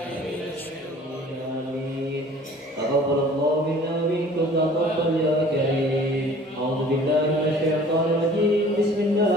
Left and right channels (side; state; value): both; normal; correlation 0.49